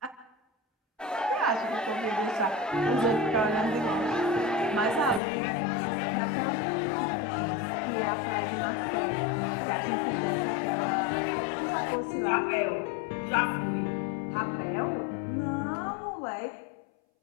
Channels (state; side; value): drops out; right; at 5.2 s